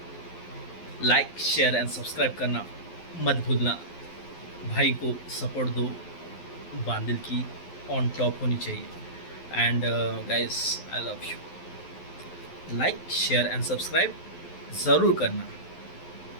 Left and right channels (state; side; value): late; right; 12 ms